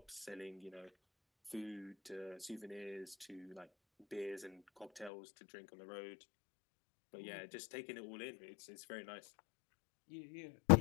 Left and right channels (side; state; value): right; drops out; at 5.1 s